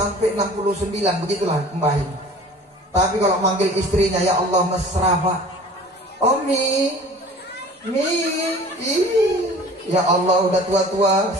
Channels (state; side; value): normal; both; correlation 0.45